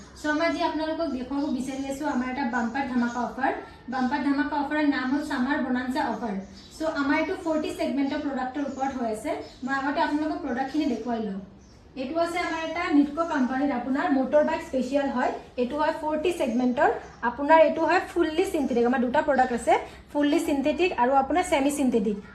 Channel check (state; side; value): identical; both; correlation 1.00